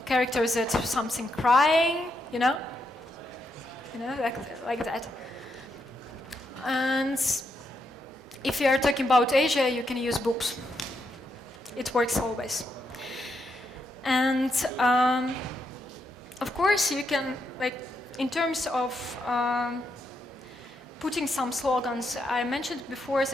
characters that have something crying, you know, like that. And if you are talking about Asia, you can use boobs. It works always. And of course, you can, like, in terms of putting some slogans, I mentioned before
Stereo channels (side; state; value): both; normal; correlation 0.81